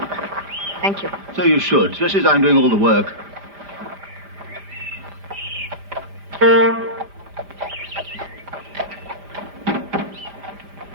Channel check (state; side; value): late; left; 5.0 ms